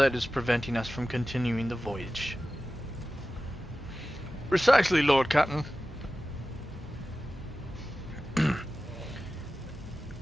is preventing us from continuing the voyage? Precisely, Lord Captain.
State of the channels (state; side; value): normal; both; correlation 0.95